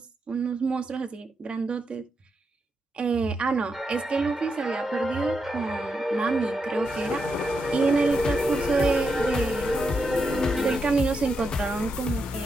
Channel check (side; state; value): both; normal; correlation 0.84